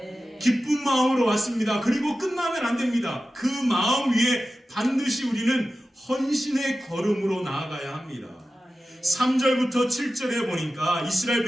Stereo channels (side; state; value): both; normal; correlation 0.94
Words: 기쁜 마음으로 왔습니다. 그리고 끝나면 안 됩니다. 그 마음 위에 반드시 우리는 헌신의 걸음으로 나아가야 합니다. 3절부터 7절에 보니까 이스라엘